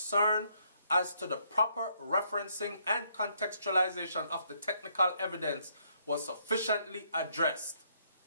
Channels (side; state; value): both; inverted; correlation -0.71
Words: as to the proper referencing and contextualization of the technical evidence was sufficiently addressed,